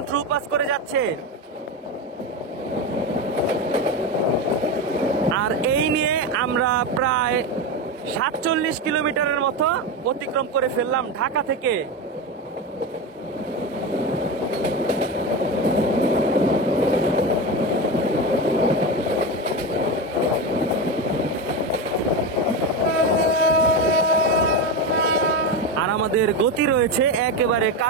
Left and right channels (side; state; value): both; normal; correlation 0.18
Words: through pass করে যাচ্ছে। আর এই নিয়ে আমরা প্রায় 47 কিলোমিটারের মতো অতিক্রম করে ফেললাম ঢাকা থেকে। আমাদের গতি রয়েছে একেবারে